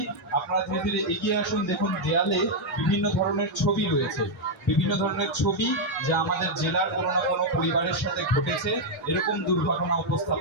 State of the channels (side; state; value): both; normal; correlation -0.01